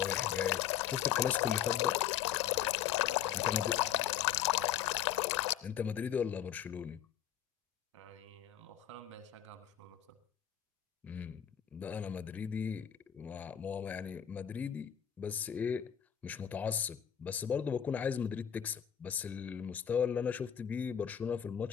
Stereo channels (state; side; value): quieter; right; 9.8 dB